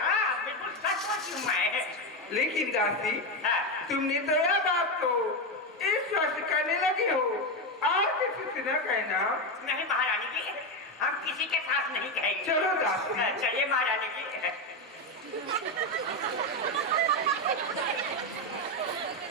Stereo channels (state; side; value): normal; both; correlation 0.11